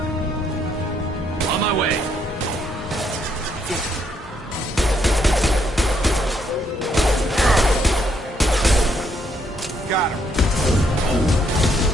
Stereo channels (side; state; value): both; normal; correlation 0.72